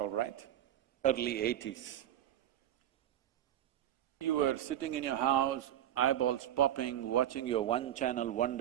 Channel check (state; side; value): quieter; left; 11.8 dB